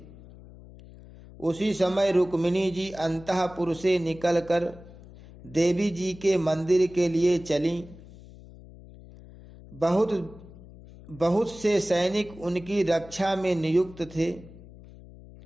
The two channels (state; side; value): noise; left; hum, 19 dB below the sound